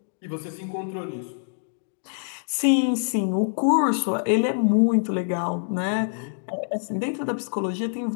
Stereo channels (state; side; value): silent; right; digital silence